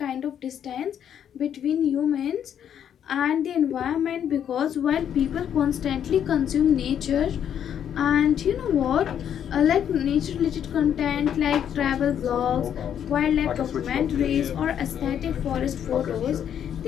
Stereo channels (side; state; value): right; quieter; 9.2 dB